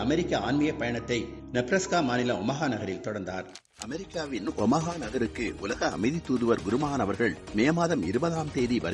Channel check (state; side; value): identical; both; correlation 1.00